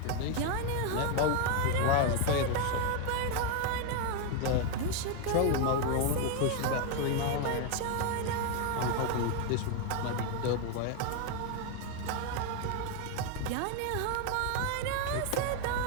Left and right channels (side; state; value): both; different; correlation 0.01